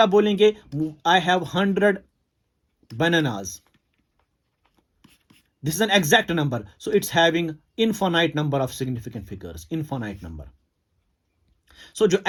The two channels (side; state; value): both; identical; correlation 1.00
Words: आप बोलेंगे I have 100 bananas, this is an exact number, so it's having infinite number of significant figures, infinite number. So जो